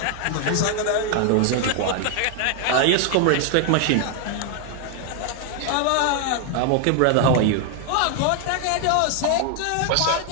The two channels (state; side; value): different; both; correlation 0.00